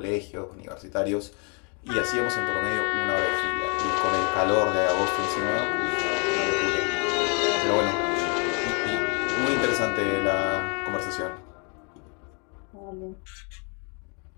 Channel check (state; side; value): quieter; right; 36.7 dB